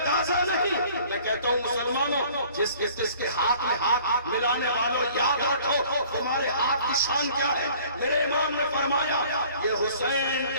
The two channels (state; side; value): inverted; both; correlation -0.52